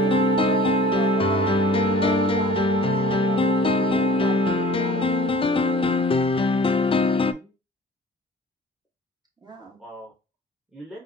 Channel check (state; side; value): normal; both; correlation 0.47